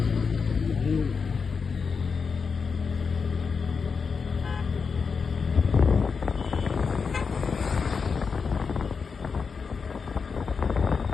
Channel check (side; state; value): right; quieter; 5.4 dB